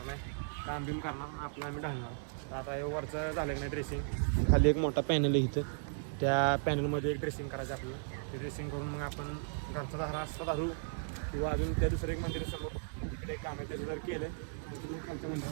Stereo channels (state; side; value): silent; left; digital silence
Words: नाही, काम बिम करणार, आपलं आम्ही ढालणार. तर आता हे वरचं झालं की नाही ड्रेसिंग, खाली एक मोठा पॅनल आहे इथं, त्या पॅनलमध्ये एक ड्रेसिंग करायचं आपलं. ते ड्रेसिंग करून मग आपण घरचा धारा असता धारू किंवा अजून त्या दुसरं एक मंदिर समोर तिकडे एक काम आहे, त्याचं जर केलं तर तुम्ही खालच्या